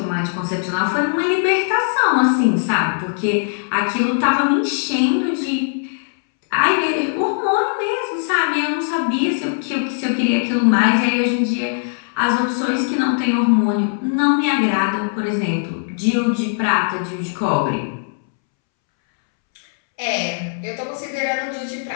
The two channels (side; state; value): right; silent; 66 dB below the other